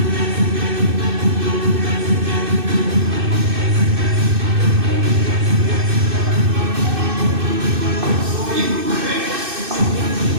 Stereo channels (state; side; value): late; left; 2.6 ms